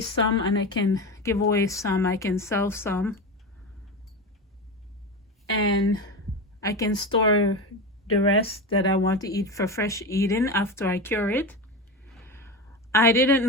some, and I can give away some. I can sell some, and I can store the rest that I want to eat for fresh eating after I cure it. I didn't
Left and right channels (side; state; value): both; normal; correlation 0.22